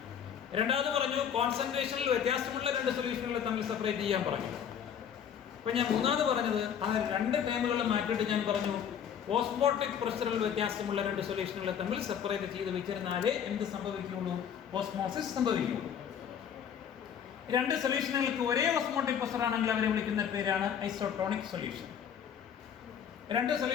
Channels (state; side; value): quieter; right; 8.4 dB